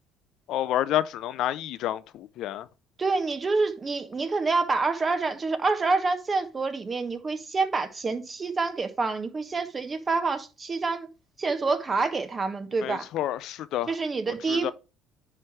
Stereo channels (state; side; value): normal; both; correlation 0.78